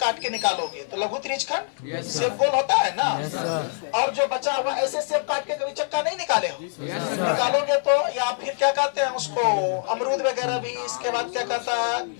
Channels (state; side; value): silent; right; digital silence